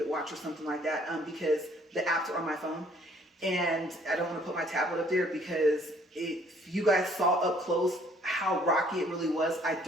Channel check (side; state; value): both; normal; correlation 0.60